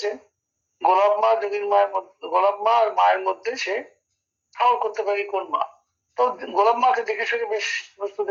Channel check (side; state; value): both; identical; correlation 1.00